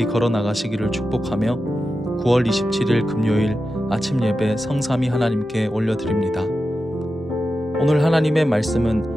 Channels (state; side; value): normal; both; correlation 0.91